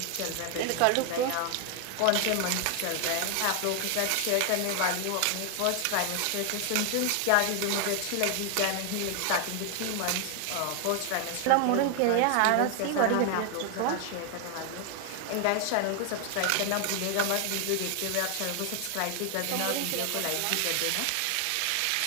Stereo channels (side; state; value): both; different; correlation 0.00